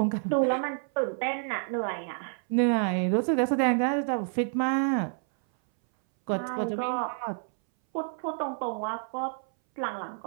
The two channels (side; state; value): left; silent; 59 dB below the other